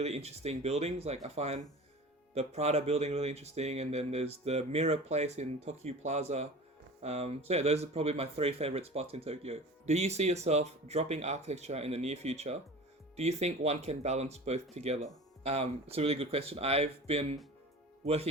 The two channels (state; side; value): normal; both; correlation 0.37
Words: interesting buildings. Like, I find the Prada building really interesting, and then there's the Mirror Place in Tokyo Plaza. So yeah, those are probably my 3 favorite spots in Tokyo. Do you see yourself dropping architecture in the near future? Do you think one can balance both together? It's a really good question. I've been